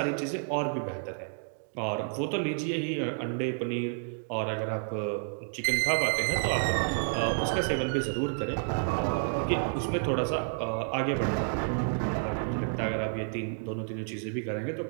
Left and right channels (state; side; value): silent; left; digital silence